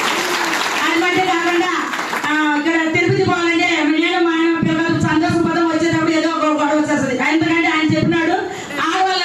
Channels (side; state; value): both; identical; correlation 1.00